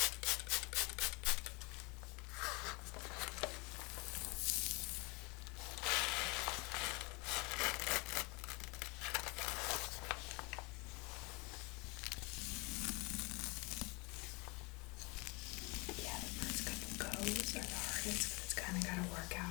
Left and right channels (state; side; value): quieter; right; 28.4 dB